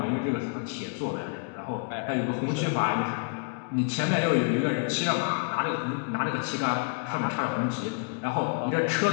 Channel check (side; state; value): right; quieter; 39.3 dB